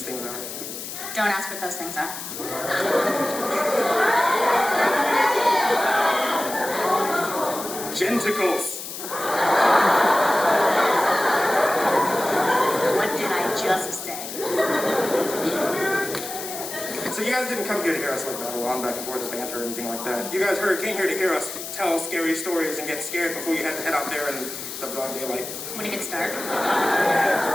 things are. Don't ask what those things are. Genticles. What did I just say? So you guys didn't come here to hear us like battle on back and forth or banter or anything like that. You guys came here to hear us tell scary stories and get scared before you had to head out there in the broad daylight. When it gets dark.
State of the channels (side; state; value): left; noise; hiss, 8 dB below the sound